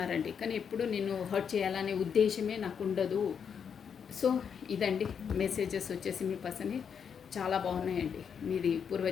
కానీ ఎప్పుడు నేను హర్ట్ చేయాలనే ఉద్దేశమే నాకు ఉండదు. సో ఇదండి మెసేజెస్ వచ్చేసి మీ పర్సన్ చాలా బాగున్నాయండి. మీది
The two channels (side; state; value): right; quieter; 7.1 dB